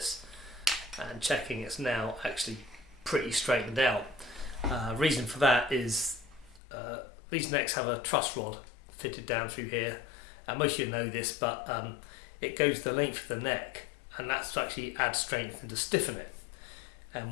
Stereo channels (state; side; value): drops out; right; at 6.6 s